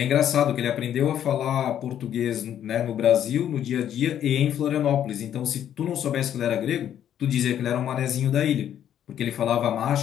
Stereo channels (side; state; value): right; quieter; 10.2 dB